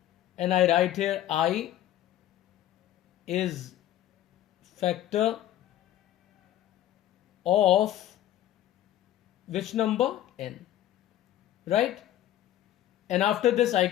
and I write here I is factor of which number? N, right? And after this I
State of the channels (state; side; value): quieter; right; 12.8 dB